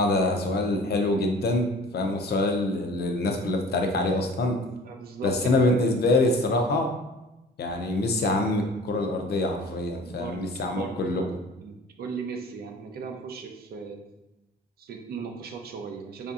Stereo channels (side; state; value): both; normal; correlation 0.45